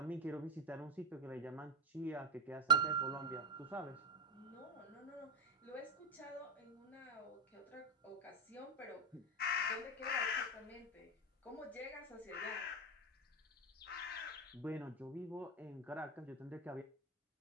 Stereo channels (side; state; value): both; normal; correlation 0.11